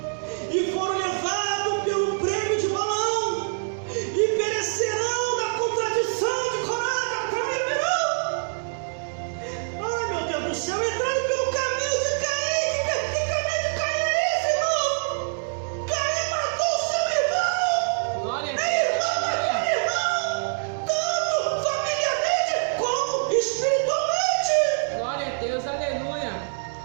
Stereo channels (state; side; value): silent; left; digital silence